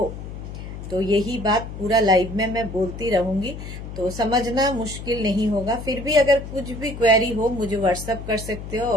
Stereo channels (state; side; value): noise; left; hum, 10 dB below the sound